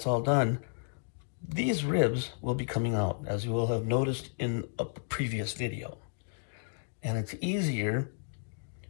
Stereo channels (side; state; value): right; silent; digital silence